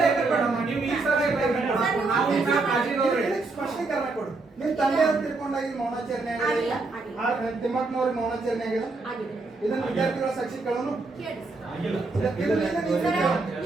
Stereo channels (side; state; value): left; quieter; 3.6 dB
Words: ನೀವು ಈ ಸ್ಪಷ್ಟೀಕರಣ ಕೊಡು. ನಿಮ್ ತಂದೆ ಅವ್ರು ತಿಳ್ಕೊಂಡಾಗಿ ಮೌನಾಚರಣೆ ತಿಮ್ಮಕ್ಕನವ್ರಿಗೆ ಮೌನಾಚರಣೆ ಆಗಿದೆ. ಇದನ್ನ ವಿದ್ಯಾರ್ಥಿಗಳ ಸಾಕ್ಷಿಗಳನ್ನು